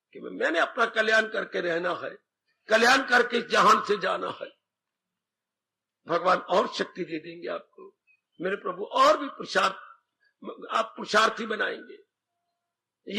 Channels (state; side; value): identical; both; correlation 1.00